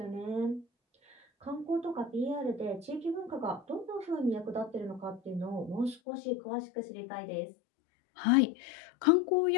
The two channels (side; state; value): right; drops out; at 6.0 s